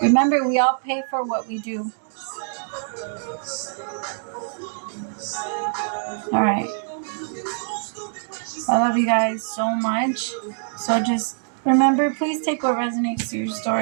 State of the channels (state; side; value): silent; left; digital silence